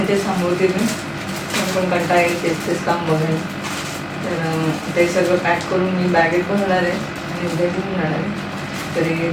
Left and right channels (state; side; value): identical; both; correlation 1.00